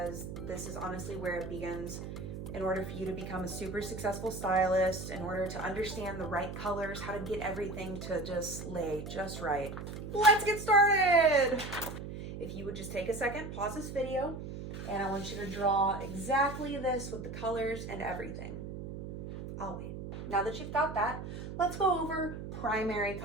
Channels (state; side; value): noise; right; hum, 8 dB below the sound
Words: this is honestly where it begins. In order for you to become a super successful stylist, in order to understand the right colors, how to get everything to just lay just right. Let's get started! If you would just take a second, pause this video, and I want you to draw exactly this with the colors and everything. I'll wait. Now that you've got that, let's go over primary